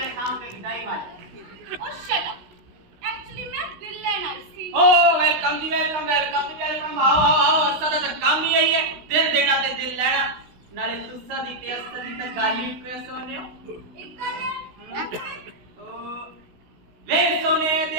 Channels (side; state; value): left; late; 16 ms